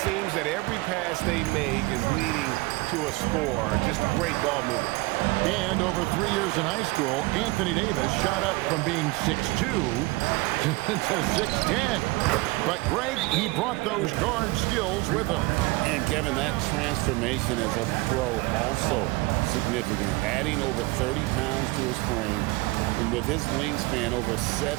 seems that every pass they make is leading to a score. Just great ball movement. And over 3 years in high school, Anthony Davis shot up from being 6'2" to 6'10". But Greg, he brought those guard skills with him. And Kevin, that transformation as a pro also significant. Adding over 30 pounds to his frame. And with his wingspan over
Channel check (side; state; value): left; quieter; 22.6 dB